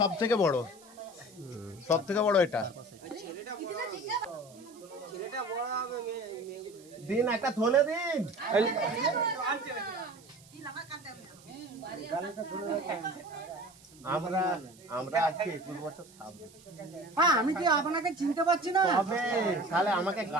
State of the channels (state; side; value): noise; right; hiss, 24 dB below the sound